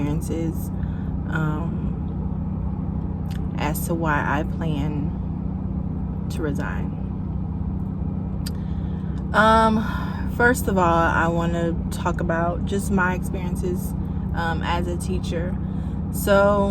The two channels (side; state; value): both; identical; correlation 1.00